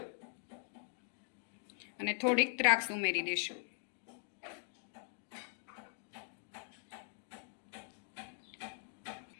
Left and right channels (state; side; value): silent; right; 50 dB below the other